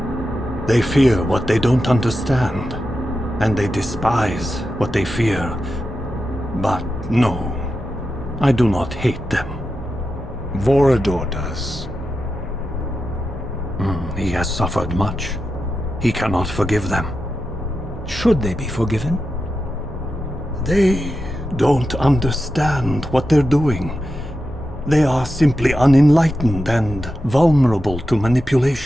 They fear what they don't understand, and they despise what they fear. But no, I do not hate them. Vorador does. He has suffered much. He cannot forgive them. Should they be forgiven? They don't understand what they're doing. They are simply unenlightened and vulnerable to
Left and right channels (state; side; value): noise; right; hum, 19 dB below the sound